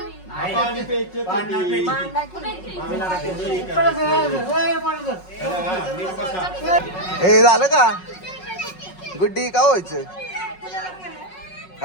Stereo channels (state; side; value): late; right; 5.4 ms